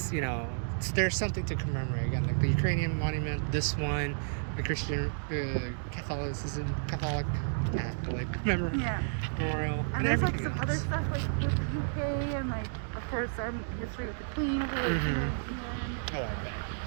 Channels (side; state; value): left; silent; digital silence